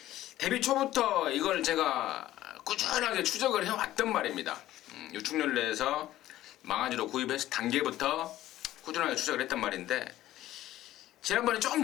데뷔 초부터 이걸 제가 꾸준하게 추적을 해왔단 말입니다. 유축연례에서 망아지로 구입해서 단계부터 꾸준하게 추적을 했단 말인데 지난번에 좀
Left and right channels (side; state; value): right; quieter; 14.4 dB